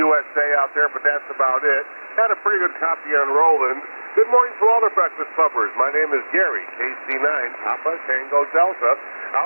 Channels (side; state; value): both; inverted; correlation -1.00